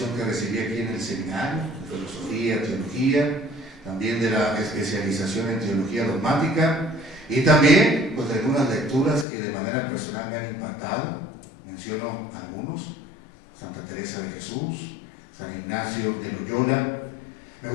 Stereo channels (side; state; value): right; drops out; at 9.2 s